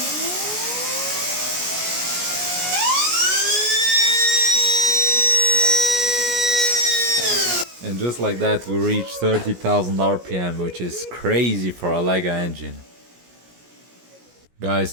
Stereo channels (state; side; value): late; left; 17 ms